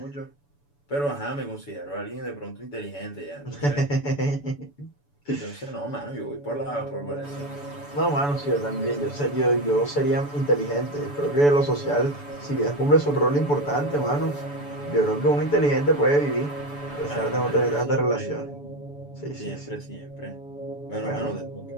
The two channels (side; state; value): right; late; 7.0 ms